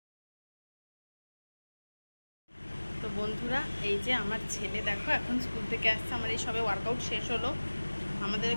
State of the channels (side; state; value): both; inverted; correlation -1.00